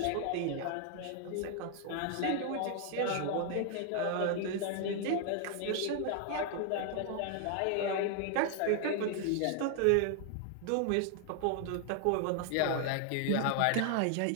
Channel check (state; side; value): different; both; correlation 0.00